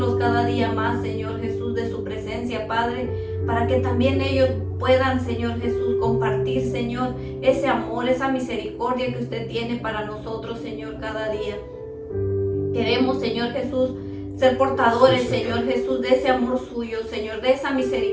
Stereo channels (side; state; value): both; identical; correlation 1.00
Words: cada día más, Señor Jesús, de su presencia, Padre, para que también ellos puedan, Señor Jesús, compartir, Señor, ese amor, esa misericordia que usted tiene para nosotros, Señor, cada día. Queremos, Señor Jesús, ser portadores, Señor Jesús, de ese amor suyo, Señor, de esa